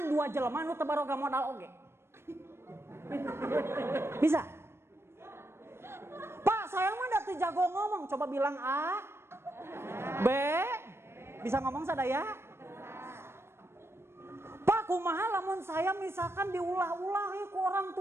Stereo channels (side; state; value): left; late; 0.12 ms